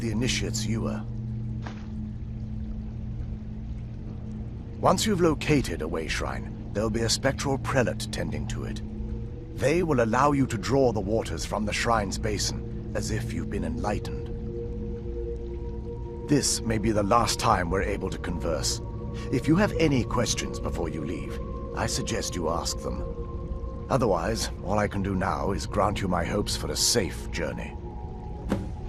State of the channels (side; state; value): both; identical; correlation 1.00